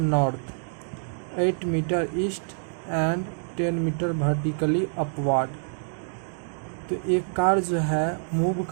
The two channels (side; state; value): left; silent; digital silence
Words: 8 metre east and 10 metre vertically upward. तो एक कार जो है मूव